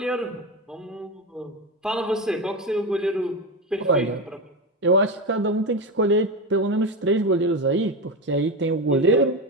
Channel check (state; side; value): normal; both; correlation 0.16